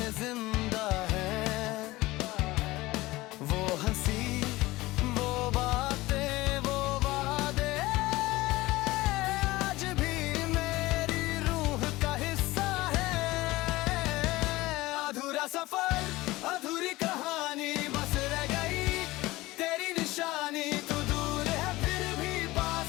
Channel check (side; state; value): right; quieter; 19.3 dB